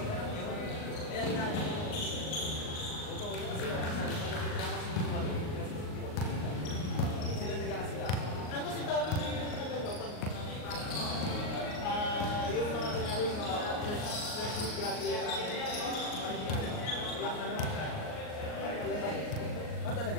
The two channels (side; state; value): right; late; 38 ms